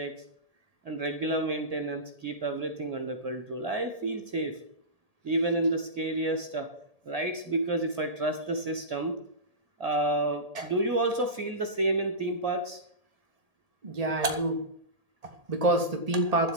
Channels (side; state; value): left; late; 1.7 ms